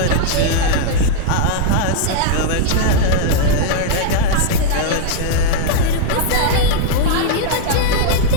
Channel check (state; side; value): different; both; correlation -0.01